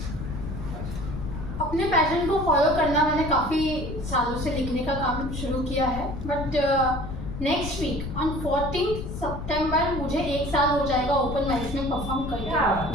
अपने passion को follow करना मैंने काफ़ी सालों से लिखने का काम शुरू किया है, बट नेक्स्ट वीक ऑन 14 सितंबर मुझे 1 साल हो जाएगा ओपन माइक्स में परफॉर्म करके।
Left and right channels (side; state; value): left; noise; rumble, 7 dB below the sound